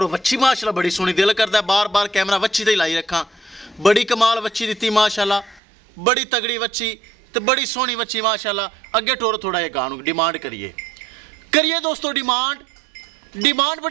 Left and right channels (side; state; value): left; drops out; at 5.6 s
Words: वच्छी माशाल्लाह बड़ी सोहनी, दिल करता है बार बार कैमरा वच्छी ते लाई रखा। बड़ी कमाल वच्छी दी माशाल्लाह, बड़ी तगड़ी वच्छी तो बड़ी सोहनी वच्छी माशाल्लाह। अगे टोर थोड़ा जिहा गां डिमांड करिए दोस्तों। डिमांड